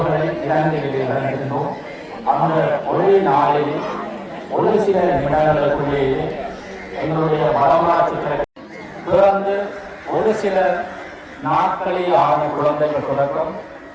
இலங்கையிலே இழந்திருந்தோம். அந்த ஒரே நாளில் ஒரு சில நிமிடங்களுக்குள்ளேயே எங்களுடைய வரலாற்று பிறந்து ஒரு சில நாட்களே ஆன குழந்தைகள் தொடக்கம்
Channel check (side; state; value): both; identical; correlation 1.00